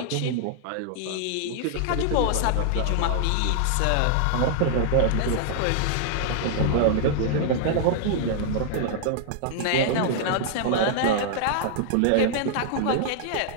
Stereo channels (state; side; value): different; both; correlation -0.01